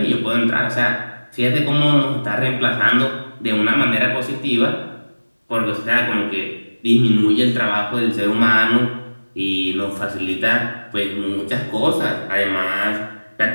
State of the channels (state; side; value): inverted; both; correlation -1.00